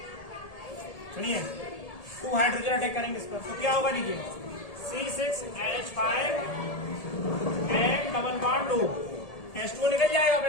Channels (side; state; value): right; late; 1.8 ms